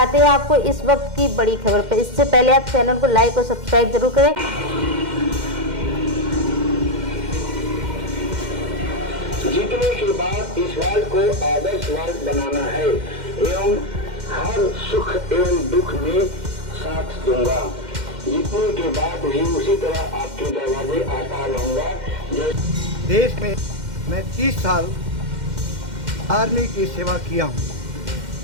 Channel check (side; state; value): left; late; 2.1 ms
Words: हैं आपको इस वक्त की बड़ी खबर पर। इससे पहले आप चैनल को लाइक और सब्सक्राइब जरूर करें। जीतने के बाद इस वार्ड को आदर्श वार्ड बनाना है एवं हर सुख एवं दुख में साथ दूंगा। जीतने के बाद भी उसी तरह आपके दरवाजे आता रहूंगा। देश में मैं 30 साल आर्मी की सेवा किया